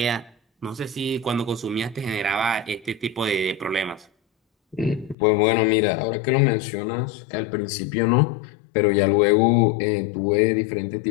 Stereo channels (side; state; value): right; drops out; at 5.2 s